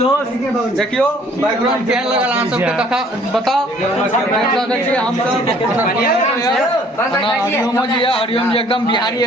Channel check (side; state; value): both; normal; correlation 0.57